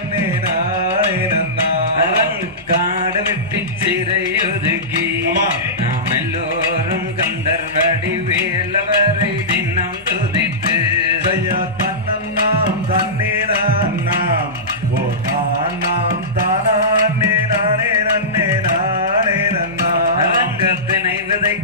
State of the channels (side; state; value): both; normal; correlation -0.18